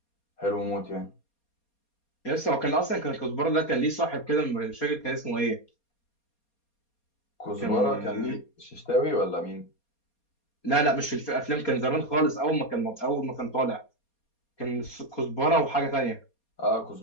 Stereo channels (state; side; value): late; right; 4.2 ms